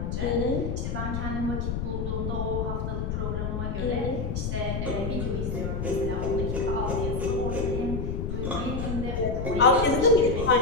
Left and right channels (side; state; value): left; noise; rumble, 2 dB below the sound